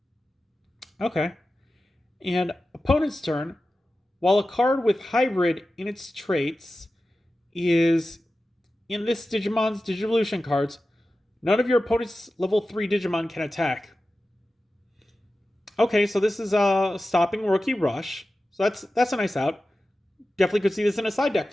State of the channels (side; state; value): both; normal; correlation 0.94